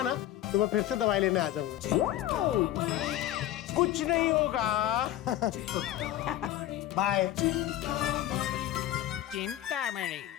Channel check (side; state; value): right; quieter; 13.2 dB